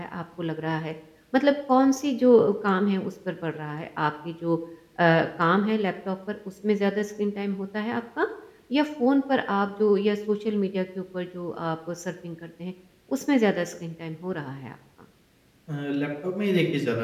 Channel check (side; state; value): both; identical; correlation 1.00